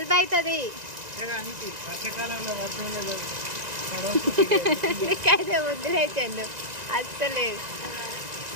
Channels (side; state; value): left; late; 1.9 ms